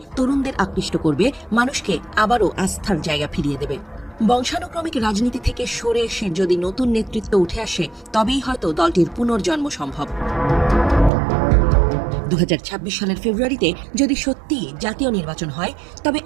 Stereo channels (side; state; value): left; drops out; at 11.1 s